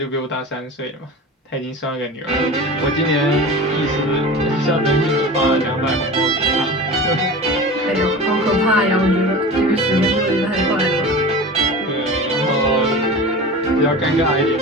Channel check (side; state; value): both; normal; correlation 0.33